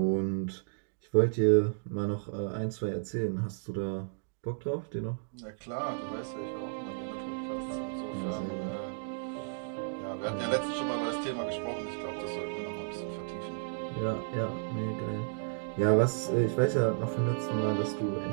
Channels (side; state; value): left; silent; digital silence